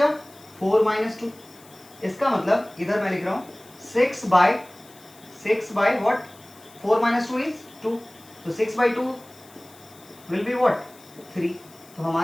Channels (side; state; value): left; noise; hiss, 24 dB below the sound